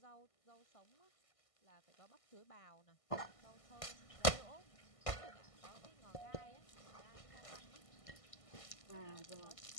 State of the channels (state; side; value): late; right; 1.6 ms